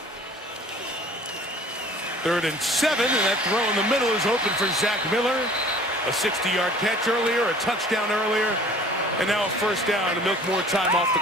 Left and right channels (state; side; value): normal; both; correlation 0.49